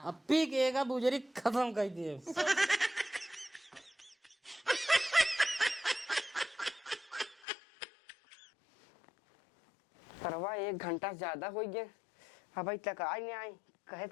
अब पी के एक बुजरी खत्म कर दिए। परवा 1 घंटा से ज्यादा हो गया, अब तक आई नहीं आई। कहे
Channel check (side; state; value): right; drops out; at 7.5 s